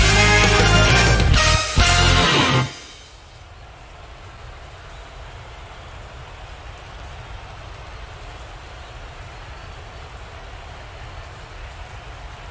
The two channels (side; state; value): both; identical; correlation 1.00